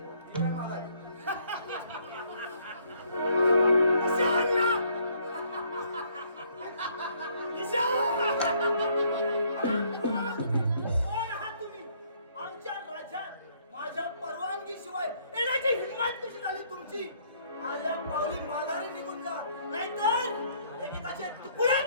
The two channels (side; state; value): both; inverted; correlation -0.65